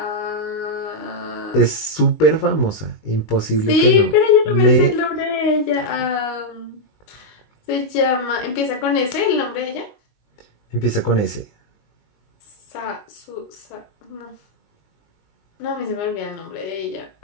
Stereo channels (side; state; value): right; late; 19 ms